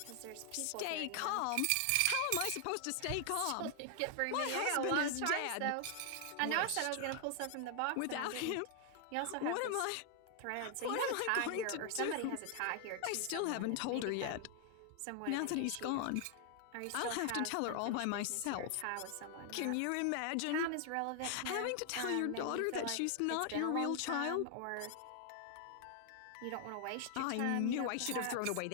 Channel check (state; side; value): different; both; correlation 0.00